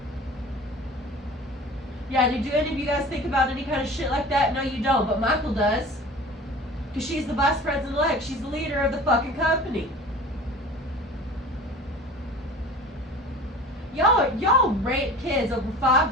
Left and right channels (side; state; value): both; normal; correlation 0.41